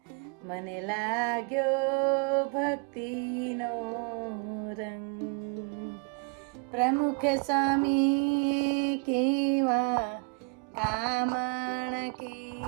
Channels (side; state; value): left; quieter; 33.7 dB